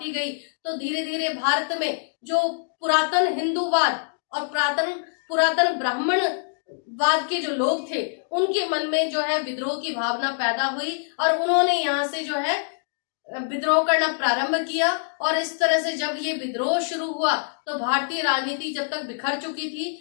गई, तो धीरे धीरे भारत में जो पुरातन हिंदूवाद और पुरातन ब्राह्मणवाद के जो लोग थे उनके मन में जो है विद्रोह की भावना पैदा हुई और उन्होंने यहाँ से जो है विद्रोह करना प्रारंभ किया। और इस तरह से जब ये विद्रोह शुरू हुआ तो भारतीय राजनीति जब तक बिखर चुकी थी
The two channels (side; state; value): right; silent; digital silence